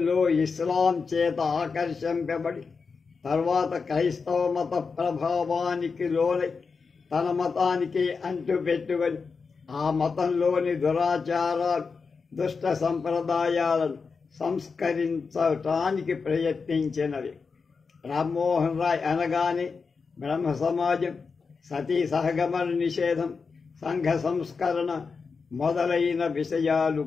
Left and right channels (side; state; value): right; quieter; 5.0 dB